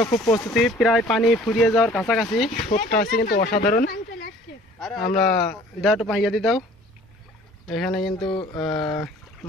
খুব প্রস্তুতি, প্রায় পানি ফুরিয়ে যাওয়ার কাছাকাছি। শোটটা আছে কিন্তু অসাধারণ। আমরা দাও একটু পাইয়া দিয়ে দাও। এখানে কিন্তু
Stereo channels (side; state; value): both; normal; correlation 0.51